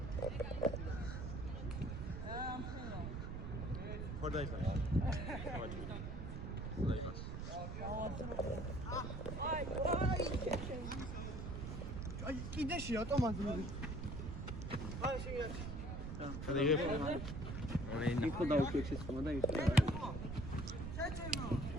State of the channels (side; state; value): right; noise; rumble, 5 dB below the sound